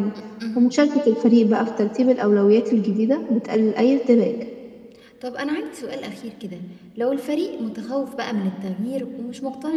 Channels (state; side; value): identical; both; correlation 1.00